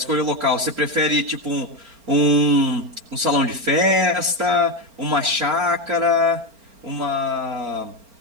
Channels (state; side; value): late; left; 4.4 ms